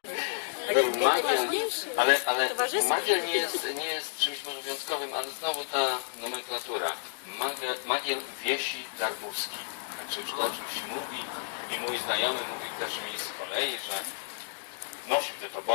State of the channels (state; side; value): silent; right; digital silence